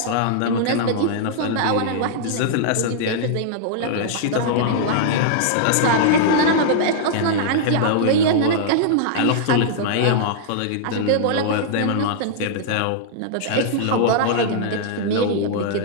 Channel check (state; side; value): different; both; correlation -0.01